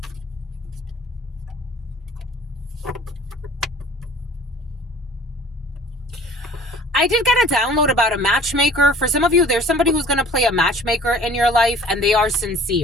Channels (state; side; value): normal; both; correlation 0.50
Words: I did get a download about a matchmaker. For some of you, there's somebody who's going to play a matchmaker in your life, and they are